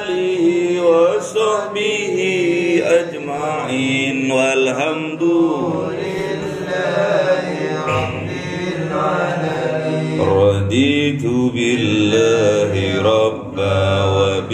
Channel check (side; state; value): both; identical; correlation 1.00